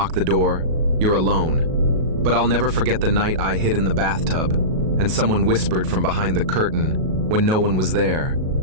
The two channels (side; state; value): left; late; 37 ms